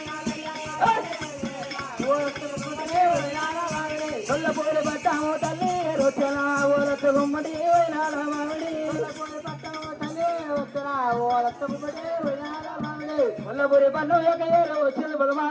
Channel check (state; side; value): identical; both; correlation 1.00